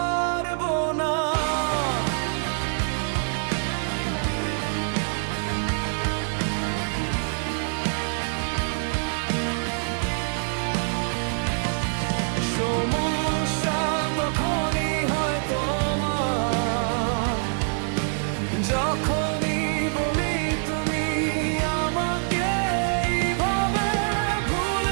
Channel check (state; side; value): silent; left; digital silence